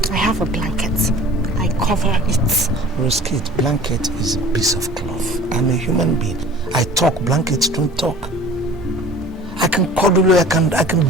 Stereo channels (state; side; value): normal; both; correlation 0.44